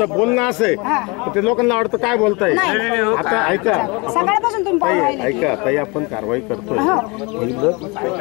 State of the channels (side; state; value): right; quieter; 27.8 dB